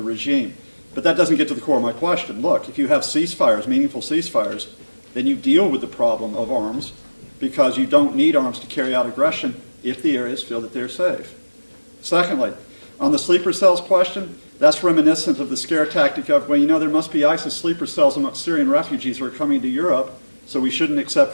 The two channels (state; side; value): inverted; both; correlation -1.00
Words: regime. But that doesn't get to the core of my question. Look, if you have ceasefires, meaningful ceasefires, then you deal with the problem of arms because you don't need arms to carry out aggression if the areas feel that they're safe. Secondly, on the sleeper cells question, that's reminiscent of the scare tactic of, well, you know, there must be ISIS sleeper cells amongst Syrian refugees who are coming to Europe, so we shouldn't